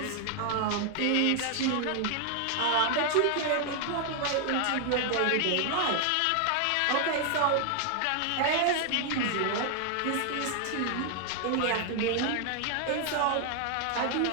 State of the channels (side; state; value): both; different; correlation 0.00